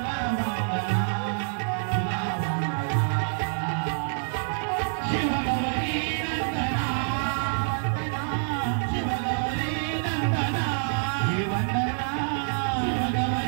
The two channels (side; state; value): left; silent; digital silence